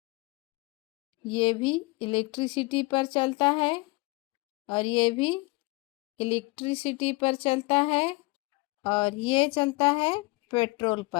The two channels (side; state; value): right; quieter; 24.6 dB